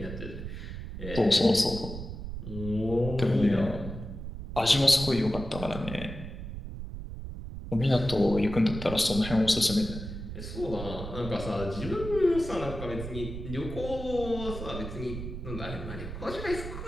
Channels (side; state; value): right; noise; rumble, 8 dB below the sound